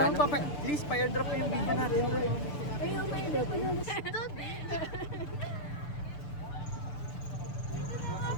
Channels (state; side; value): late; right; 6.8 ms